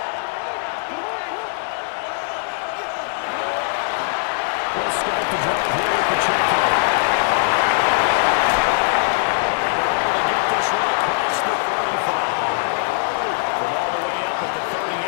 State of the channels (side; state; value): right; silent; 65 dB below the other